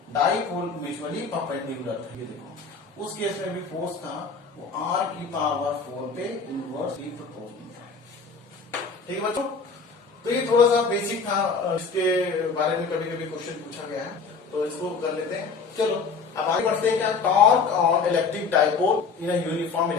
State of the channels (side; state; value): right; quieter; 4.9 dB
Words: डाइपोल म्यूचुअली परपेंडिकुलर था। ये देखो उस केस में भी फोर्स था वो r की पावर 4 पे इनवर्सली प्रोपोर्शनल था। ठीक है बच्चों, तो ये थोड़ा सा बेसिक था, इसके बारे में कभी कभी क्वेश्चन पूछा गया है, तो इसको कर लेते हैं। चलो अब आगे बढ़ते हैं। क्या, torque on electric dipole in uniform